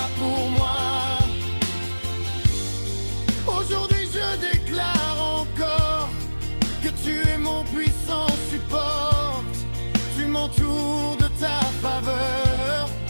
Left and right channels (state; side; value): inverted; both; correlation -1.00